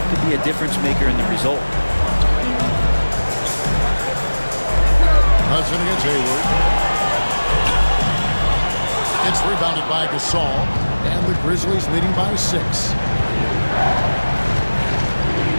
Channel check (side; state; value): both; inverted; correlation -1.00